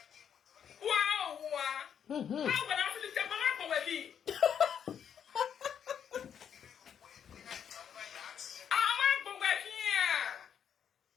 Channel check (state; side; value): quieter; right; 8.3 dB